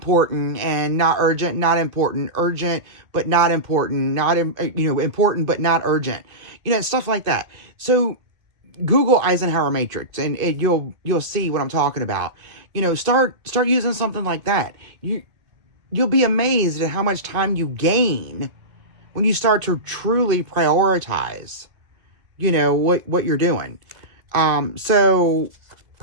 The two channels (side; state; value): left; late; 1.8 ms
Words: and not urgent, not important, urgent, but not important, not, important, but not urgent, stuff like that. So Google Eisenhower matrix and you'll see what I'm talking about. Start using something like that. You'll be amazed at how much time you gain when you start to truly prioritize, what you're doing.